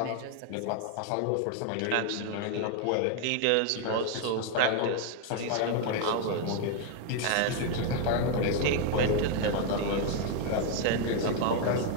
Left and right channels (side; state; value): both; different; correlation 0.00